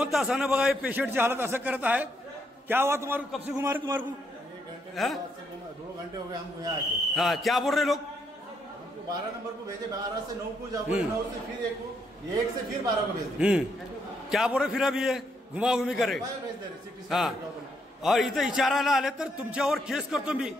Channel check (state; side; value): normal; both; correlation 0.75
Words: तासानं बघा हे पेशंटची हालत असं करत आहे। क्या हुआ तुम्हारे कब से घुमा रहे तुम्हारे को? 2 घंटे हो गए हमको यहाँ आके। हाँ क्या बोल रहे लोग? 12 नंबर को भेजे, 12 से 9 को जाओ, 9 से फिर 1 को, 1 से फिर 12 को भेज। क्या बोल रहे फिर अभी ये घुमा घुमी करे। हाँ और इथं विचारायला आले तर तुमच्यावर केस करतो मी,